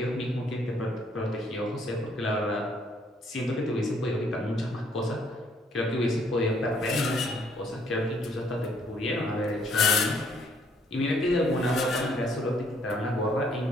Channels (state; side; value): normal; both; correlation 0.66